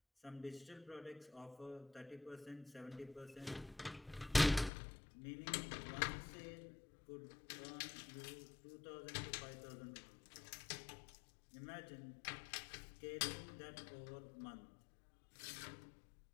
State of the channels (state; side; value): drops out; right; at 4.7 s